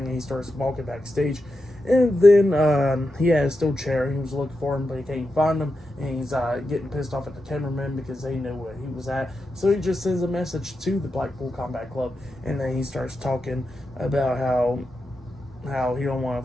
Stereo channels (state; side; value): normal; both; correlation 0.88